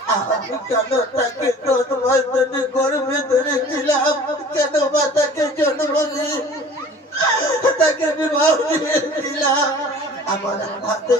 আমি কেন তাকে 10 মাস ধরে গর্ভে ধরেছিলাম, কেন মা তাকে জন্ম দিয়ে তাকে বিবাহ দিয়েছিলাম। আমার হাতে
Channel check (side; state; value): both; normal; correlation 0.46